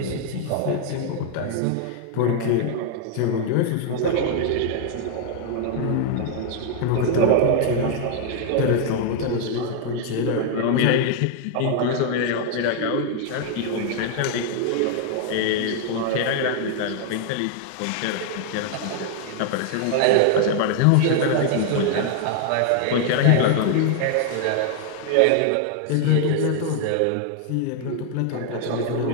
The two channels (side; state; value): both; different; correlation 0.00